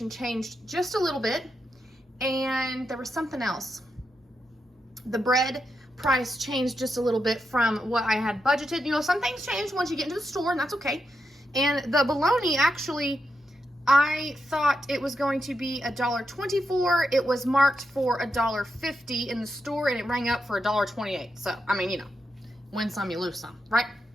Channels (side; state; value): both; normal; correlation 0.85